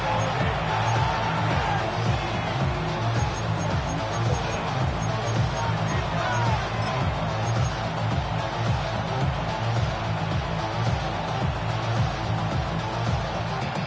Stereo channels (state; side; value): identical; both; correlation 1.00